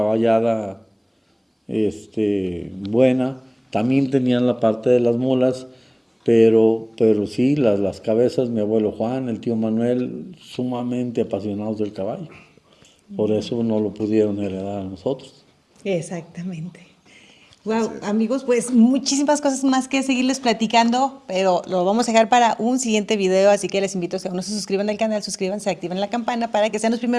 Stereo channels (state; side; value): identical; both; correlation 1.00